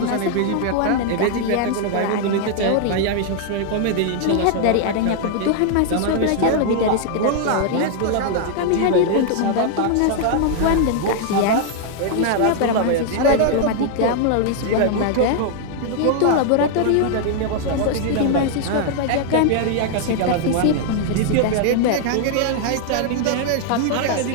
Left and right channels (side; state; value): both; different; correlation 0.00